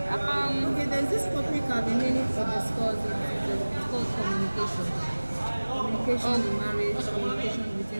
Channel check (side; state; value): both; inverted; correlation -1.00